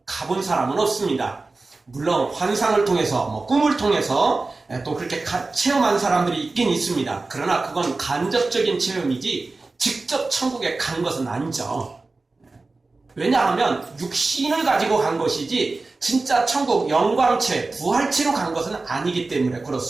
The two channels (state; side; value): quieter; left; 3.5 dB